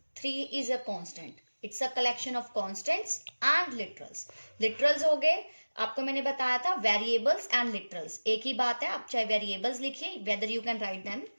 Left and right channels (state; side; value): inverted; both; correlation -1.00